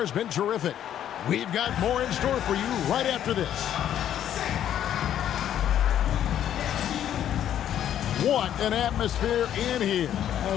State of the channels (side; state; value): right; quieter; 10.6 dB